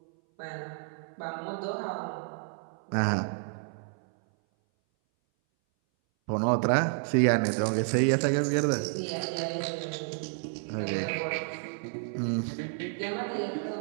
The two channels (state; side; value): silent; left; 57 dB below the other